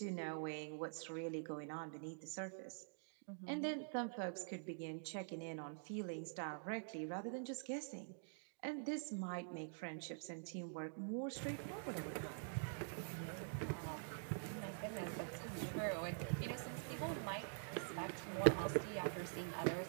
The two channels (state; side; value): silent; left; digital silence